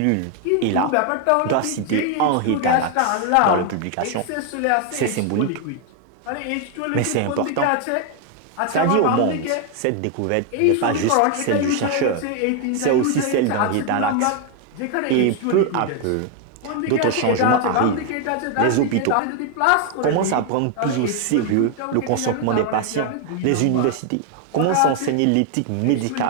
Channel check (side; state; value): both; different; correlation 0.00